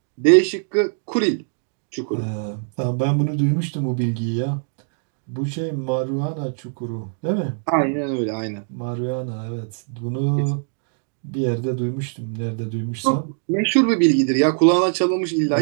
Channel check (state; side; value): silent; left; digital silence